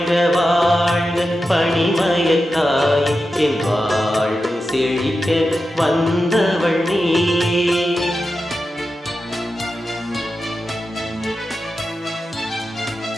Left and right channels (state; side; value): normal; both; correlation 0.91